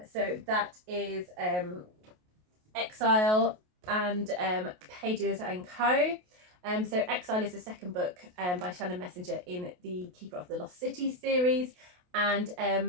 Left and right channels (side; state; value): left; late; 28 ms